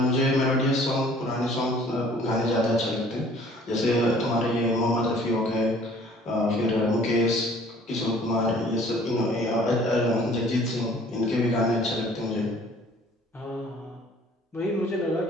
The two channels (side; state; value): both; normal; correlation 0.53